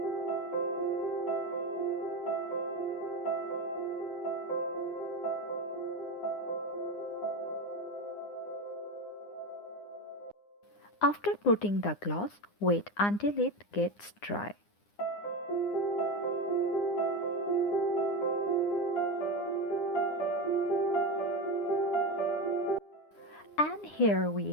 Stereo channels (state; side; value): late; right; 9.8 ms